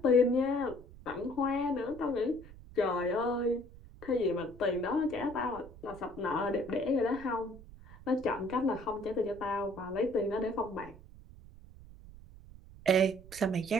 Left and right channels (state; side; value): noise; right; rumble, 19 dB below the sound